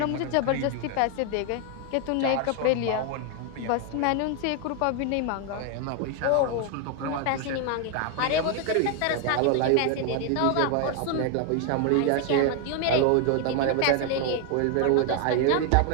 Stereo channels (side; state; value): both; different; correlation 0.01